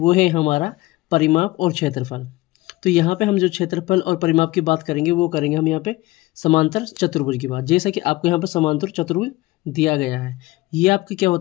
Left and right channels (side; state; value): right; quieter; 19.6 dB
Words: है हमारा परिमाप और क्षेत्रफल। तो यहाँ पे हम जो क्षेत्रफल और परिमाप की बात करेंगे वो करेंगे हम यहाँ पे समांतर चतुर्भुज की बात। जैसा कि आपको यहाँ पर समांतर चतुर्भुज दिया गया है, ये आपका क्या